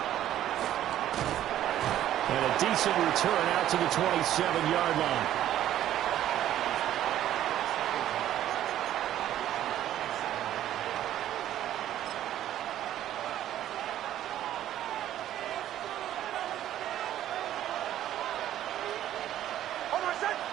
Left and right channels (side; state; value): left; quieter; 12.2 dB